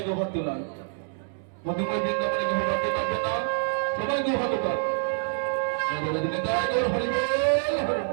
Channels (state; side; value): silent; left; digital silence